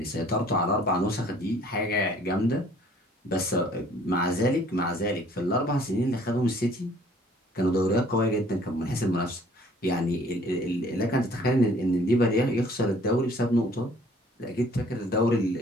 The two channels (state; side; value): normal; both; correlation 0.56